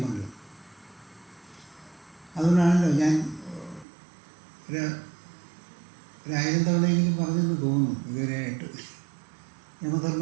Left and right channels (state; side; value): drops out; left; at 3.9 s